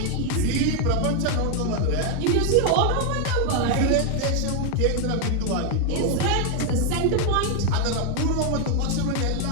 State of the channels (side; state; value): both; different; correlation 0.01